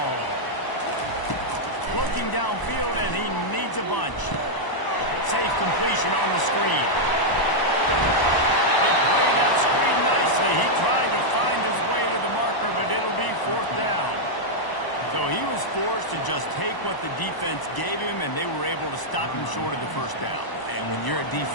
Looking downfield, and he needs a bunch. Safe completion on the screen. They played that screen nicely. He tried to find his way to the marker, but it'll be 4th down. So he was forced to just take what the defense gave him, and they were able to stop him short of the 1st down. And when you're a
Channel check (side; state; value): right; late; 1.0 ms